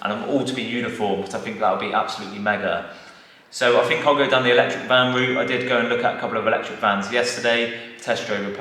and them all to be uniform, because I think that would be absolutely mega. So I think I'll go down the electric van route. I did go and look at a couple of electric vans yesterday, test drove a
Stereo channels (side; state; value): both; identical; correlation 1.00